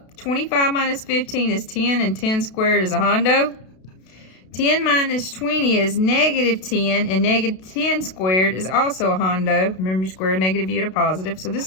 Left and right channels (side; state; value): right; late; 32 ms